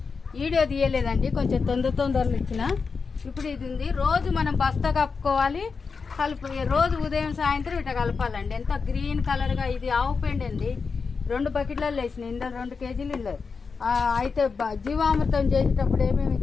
వీడియో తీయలేదండి. కొంచెం తొందరలో ఇచ్చిన. ఇప్పుడు ఇది ఉంది. రోజు మనం బస్తా కప్పుకోవాలి. రోజు ఉదయం సాయంత్రం ఇట్లా కలపాలండి. ఎంత గ్రీన్ కలర్గా. ఇది ఆవు పెండ అండి. 2 బకెట్లలో వేసినాయి. ఇందులో 2 కేజీలు ఇల్లు. అయితే జీవామృతం చేసేటప్పుడు ఏమేమి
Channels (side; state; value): right; quieter; 5.0 dB